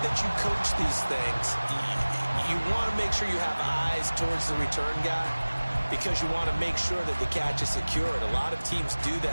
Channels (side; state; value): both; inverted; correlation -1.00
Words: that you coach these things, you want to make sure you have eyes towards the return guy, because you want to make sure that the catch is secured. A lot of teams do